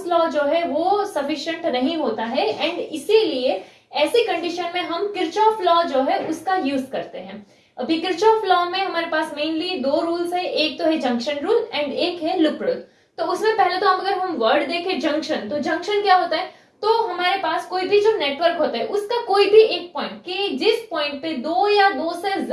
लॉ जो है वो सफिशिएंट नहीं होता है, एंड इसीलिए ऐसी कंडीशन में हम किरचॉफ लॉ जो है उसका यूज करते हैं। अभी किरचॉफ लॉ में हमारे पास मेनली दो रूल्स है, एक तो है जंक्शन रूल एंड एक है लूप रूल। तो उसमें पहले तो अगर हम वर्ड देखें जंक्शन, तो जंक्शन क्या होता है, तो हमारे पास कोई भी जो नेटवर्क होता है उसका कोई भी एक पॉइंट, कि जिस पॉइंट पे दो या दो से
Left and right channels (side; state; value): both; identical; correlation 1.00